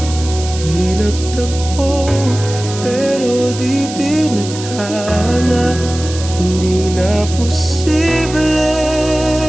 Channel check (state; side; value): noise; right; hiss, 11 dB below the sound